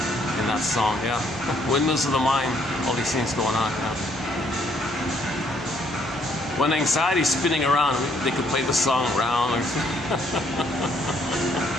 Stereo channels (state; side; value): normal; both; correlation 0.68